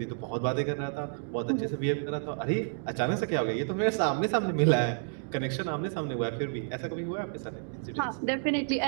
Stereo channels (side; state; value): left; silent; digital silence